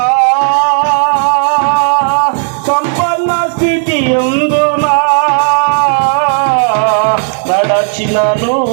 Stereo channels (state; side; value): silent; left; digital silence